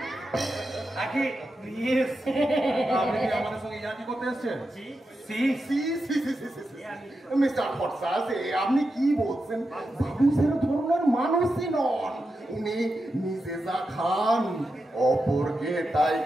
আগে নিয়ে আপনি কি আমাদের সঙ্গে ইয়ার্কি করতে এসেছেন? মিস্টার ফরসাস, আপনি কি বলছেন? বাবু সেরকম ধরনের মানুষই নন। উনি নিজে যা খান অপরকে তাই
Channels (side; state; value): both; normal; correlation 0.88